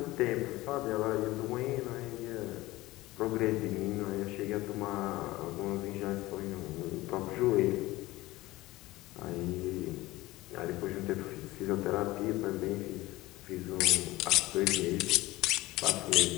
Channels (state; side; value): quieter; right; 18.8 dB